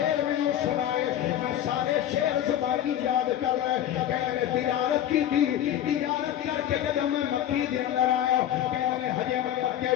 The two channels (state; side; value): quieter; right; 11.2 dB